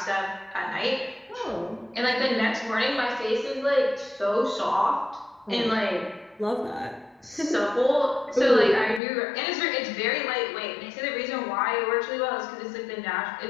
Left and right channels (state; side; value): drops out; right; at 9.0 s